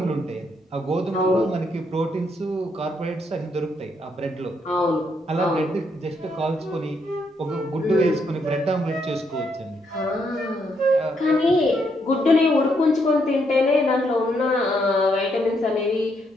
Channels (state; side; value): normal; both; correlation 0.75